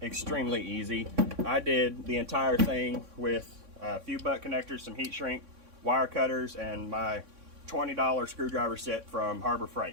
easy. I did the entire thing with a few butt connectors, some heat shrink, wire cutters, and my $20 screwdriver set from Harbor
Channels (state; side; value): late; left; 3.6 ms